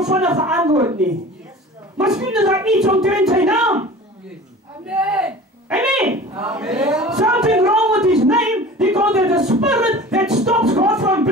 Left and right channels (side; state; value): both; normal; correlation 0.40